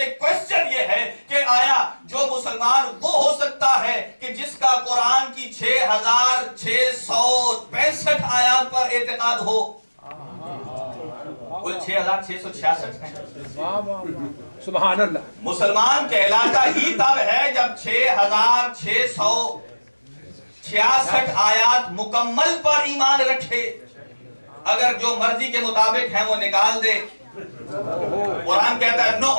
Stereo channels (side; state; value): both; inverted; correlation -1.00